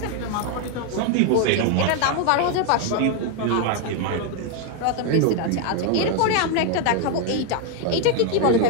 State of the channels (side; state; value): both; different; correlation 0.01